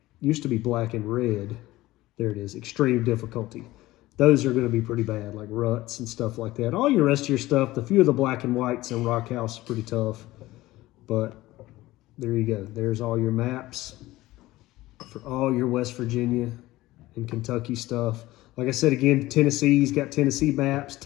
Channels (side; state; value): right; quieter; 17.6 dB